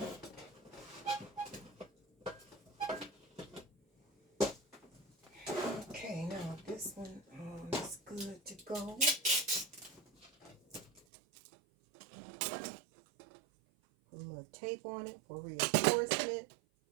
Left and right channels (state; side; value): drops out; left; at 11.0 s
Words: Okay, now this one is good to go. Put a little tape on it for reinforcement